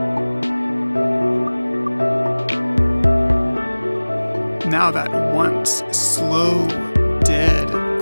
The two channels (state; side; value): inverted; both; correlation -1.00